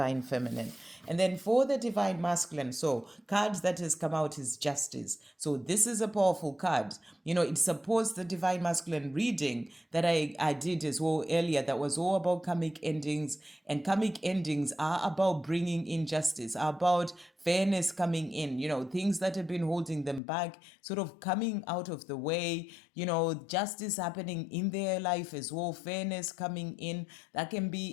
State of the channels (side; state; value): right; drops out; at 20.2 s